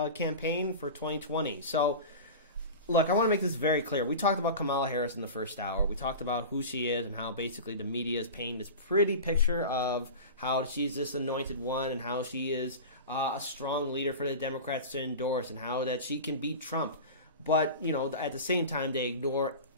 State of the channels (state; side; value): inverted; both; correlation -0.31